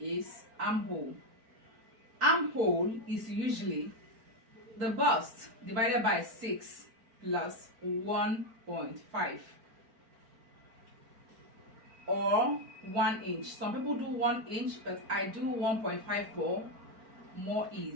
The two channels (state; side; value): late; left; 4.4 ms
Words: armhole. Armhole is usually the bust divided by 6 plus 1.5 or 1 inch. Some people do 1 inch, but I do 1.5 for more